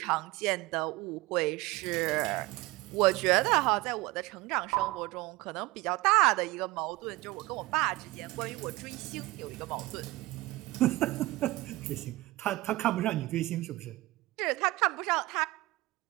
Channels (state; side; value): quieter; left; 20.1 dB